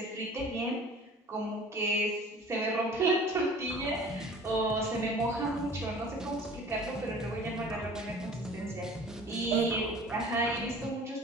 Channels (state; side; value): normal; both; correlation 0.46